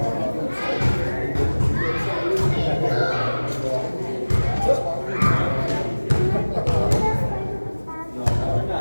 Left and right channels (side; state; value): both; inverted; correlation -1.00